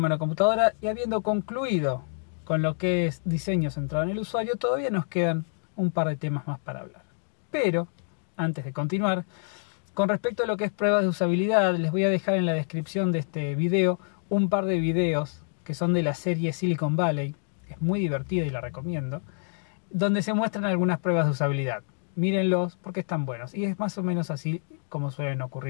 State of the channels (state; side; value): silent; right; digital silence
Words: y habiendo concluido con lo que es diseño centrado en el usuario, todavía nos quedan un par de temas más para hablar. Pero, antes de continuar, con respecto a lo que es pruebas de usabilidad, les voy a dejar en la descripción de este video un par de videos que son de la serie Silicon Valley, es muy divertida y la recomiendo, donde se muestran algunas pruebas de usabilidad. Mírenlos porque están buenos y es más o menos así como suelen